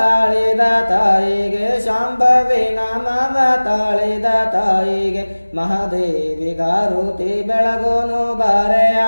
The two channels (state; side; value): inverted; both; correlation -1.00